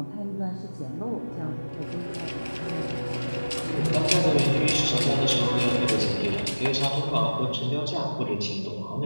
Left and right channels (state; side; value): inverted; both; correlation -1.00